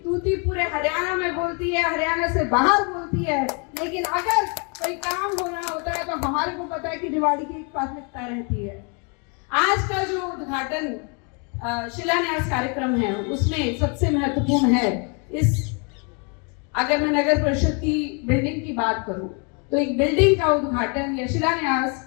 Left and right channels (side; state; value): right; quieter; 35.7 dB